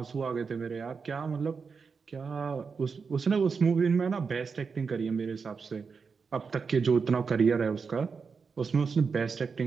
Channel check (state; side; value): quieter; left; 5.3 dB